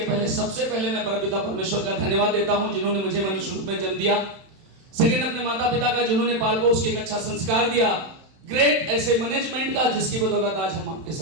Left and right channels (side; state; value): left; late; 31 ms